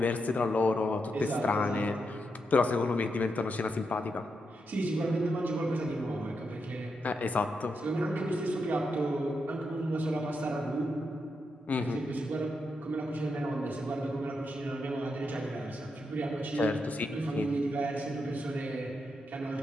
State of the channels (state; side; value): normal; both; correlation 0.84